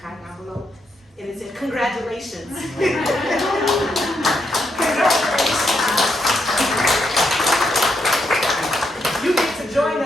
envelope. And it said, congratulations. Congratulations. You get to join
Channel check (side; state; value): both; normal; correlation 0.80